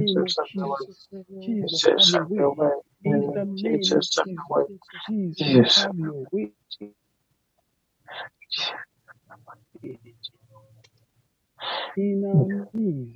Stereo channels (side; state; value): both; identical; correlation 1.00